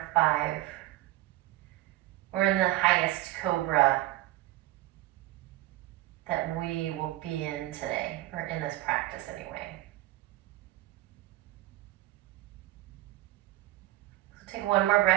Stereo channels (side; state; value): left; quieter; 16.7 dB